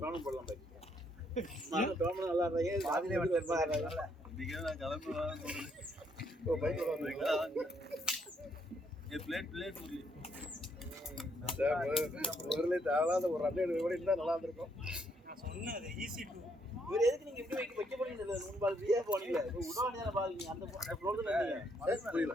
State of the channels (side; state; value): both; normal; correlation 0.72